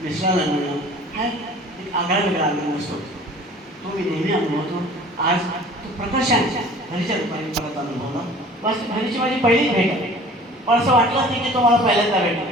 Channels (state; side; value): normal; both; correlation 0.47